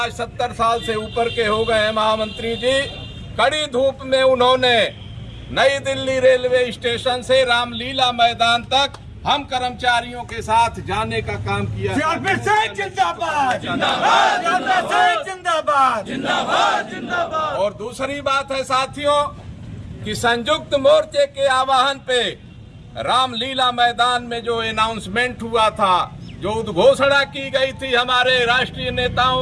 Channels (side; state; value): both; identical; correlation 1.00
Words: 70 साल से ऊपर के हो गए हैं महामंत्री जी, कड़ी धूप में उन्होंने नई दिल्ली रेलवे स्टेशन से रामलीला मैदान तक हम कर्मचारियों के साथ जाने का काम किया। जिंदाबाद जिंदाबाद जिंदाबाद जिंदाबाद। और दूसरी बात है साथियों कि संयुक्त मोर्चे के आह्वान पे रामलीला मैदान में जो अनाउंसमेंट हुआ था, जो उद्घोषणा की गई थी हमारे राष्ट्रीय